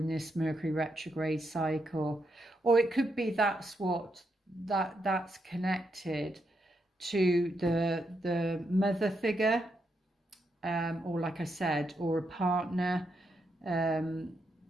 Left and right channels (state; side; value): normal; both; correlation 0.81